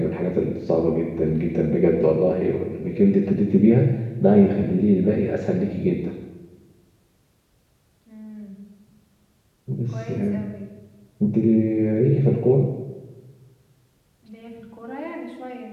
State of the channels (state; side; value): identical; both; correlation 1.00